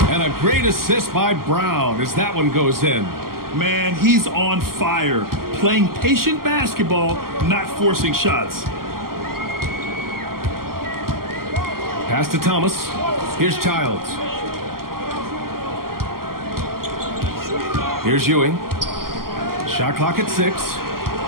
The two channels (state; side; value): late; left; 0.92 ms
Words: And a great assist by Brown as that one goes in. Man, he's on fire. Playing patient basketball, not forcing shots. Pass to Thomas. Here's Childs. Here's Ewing. Shot clock at 6.